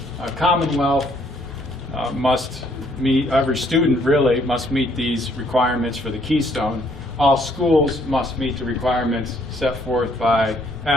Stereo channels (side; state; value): both; normal; correlation 0.66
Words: Commonwealth must meet, every student really must meet these requirements for the Keystone. All schools must meet the requirements set forth by